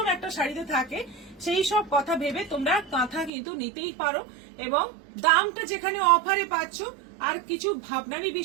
একটা শাড়িতে থাকে, সেই সব কথা ভেবে তোমরা কাঁথা কিন্তু নিতেই পারো। এবং দামটা যেখানে অফারে পাচ্ছ, আর কিছু ভাবনারই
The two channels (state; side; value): drops out; left; at 3.3 s